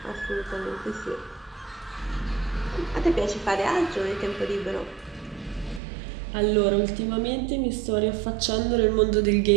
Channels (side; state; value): left; drops out; at 5.8 s